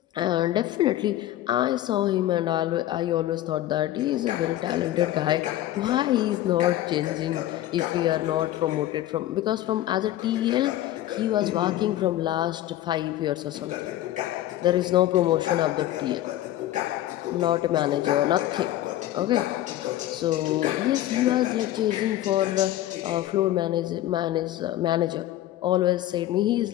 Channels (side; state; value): right; quieter; 14.0 dB